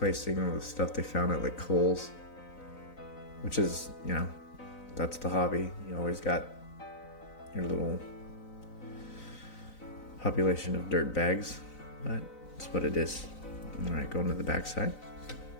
them with stuff they found at like Kohl's, which is, you know, that's the hobby. You always got your little population of dirt bags, but it's what it is. All right, going to the back side.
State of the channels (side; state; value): right; late; 4.0 ms